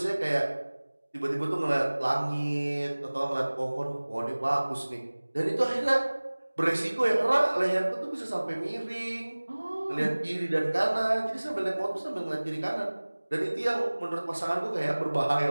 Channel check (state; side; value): inverted; both; correlation -1.00